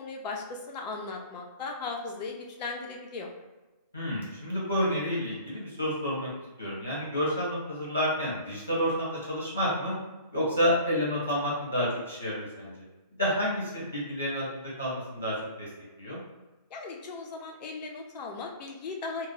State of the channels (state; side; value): inverted; both; correlation -0.44